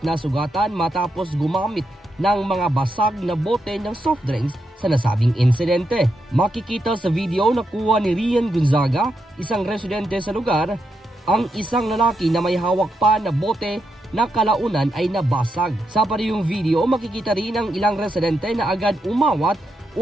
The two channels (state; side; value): normal; both; correlation 0.83